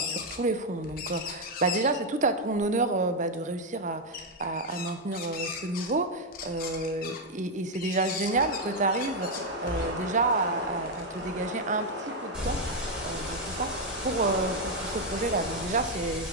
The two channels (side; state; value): both; normal; correlation 0.03